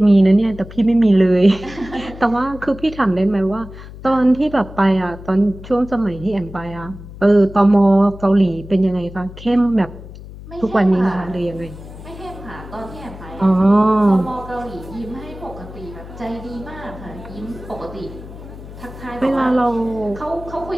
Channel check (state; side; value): noise; left; hum, 15 dB below the sound